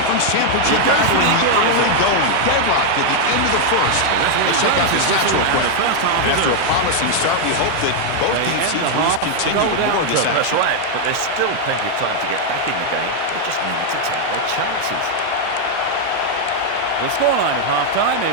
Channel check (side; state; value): both; different; correlation 0.00